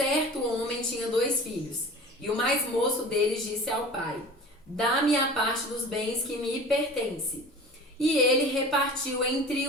homem tinha 2 filhos, e o mais moço deles disse ao pai: Dá-me a parte dos bens que me pertence. E ele repartiu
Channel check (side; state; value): both; normal; correlation 0.39